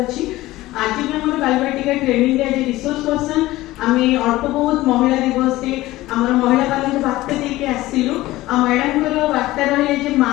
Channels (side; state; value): right; quieter; 17.4 dB